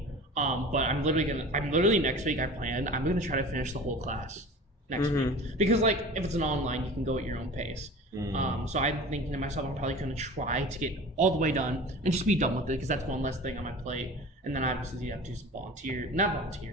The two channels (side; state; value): both; normal; correlation 0.38